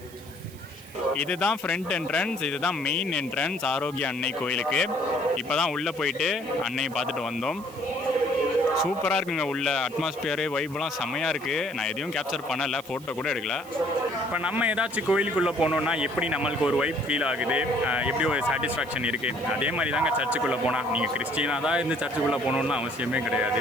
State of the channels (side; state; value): right; noise; hiss, 21 dB below the sound